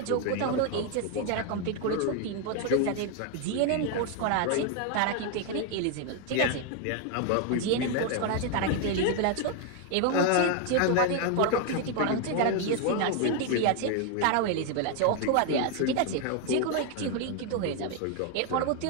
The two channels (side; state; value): both; different; correlation 0.01